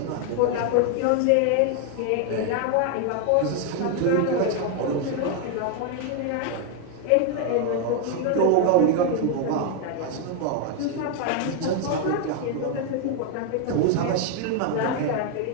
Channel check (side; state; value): both; different; correlation 0.01